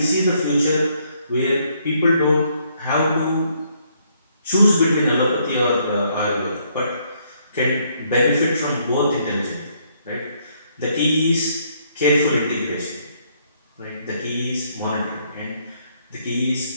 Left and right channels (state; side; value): inverted; both; correlation -0.70